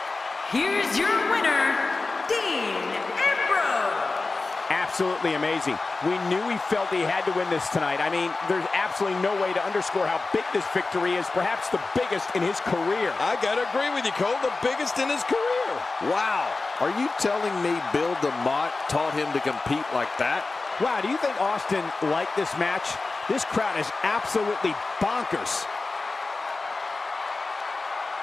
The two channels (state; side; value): quieter; right; 3.6 dB